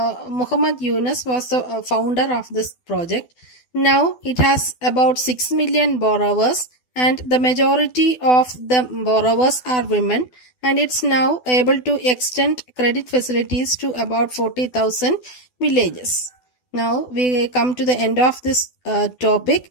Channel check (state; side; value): late; right; 12 ms